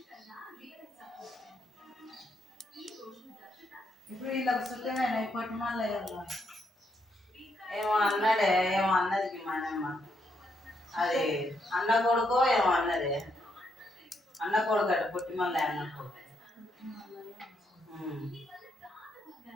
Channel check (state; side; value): normal; both; correlation 0.77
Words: ఇప్పుడు వీళ్ళకి సుఖమేనా ఇప్పటి మళ్ళీ ఏమో అన్నాడే, ఏమో అన్నది మనమ్మ. అది అన్న కొడుకో ఏమో అన్నది. అన్న కొడుకు అట పుట్టి మళ్ళీ అన్న కొడుకు.